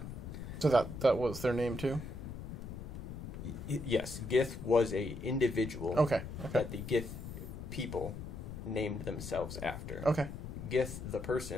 So that was their name too? Yes, Gith was a individual Okay. that the Gith people named themselves after. Okay. Gith, the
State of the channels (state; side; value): noise; left; rumble, 8 dB below the sound